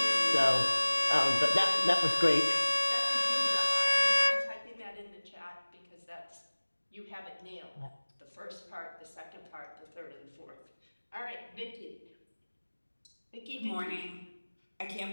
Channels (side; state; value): both; inverted; correlation -1.00